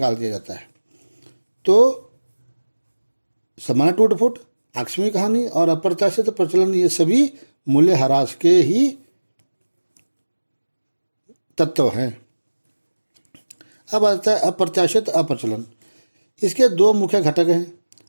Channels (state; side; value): inverted; both; correlation -1.00